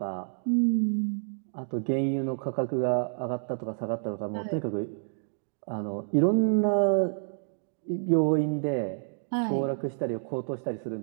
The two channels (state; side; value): silent; left; digital silence